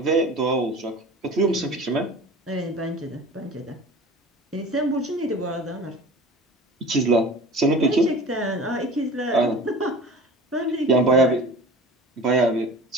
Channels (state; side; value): normal; both; correlation 0.38